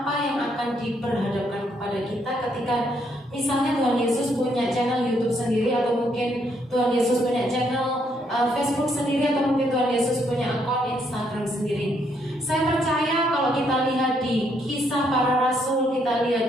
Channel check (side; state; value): both; normal; correlation 0.73